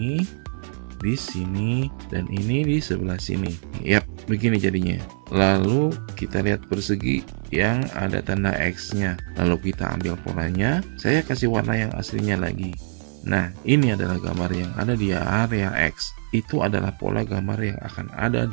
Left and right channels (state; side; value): silent; left; digital silence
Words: di sini, dan ini di sebelah sini. Yap, begini jadinya. Lalu kita lihat persegi yang ada tanda X-nya. Lalu kita ambil polanya. Saya kasih warna yang aslinya lagi. Nah, ini adalah gambar yang ada di area X. Itu adalah pola gambar yang akan ada